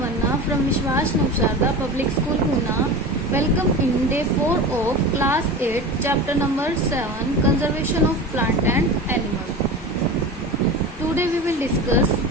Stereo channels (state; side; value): normal; both; correlation 0.30